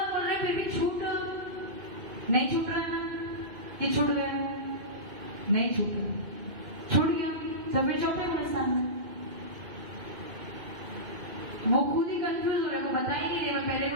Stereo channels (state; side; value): late; left; 2.5 ms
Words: बोल रहे हैं फिर भी छूट नहीं छूट रहा है। ये छूट गया नहीं छूट रहा, छूट गया तो फिर चौथे गुणस्थान में वो खुद ही कंफ्यूज हो रहे, को बता ही नहीं रहे पहले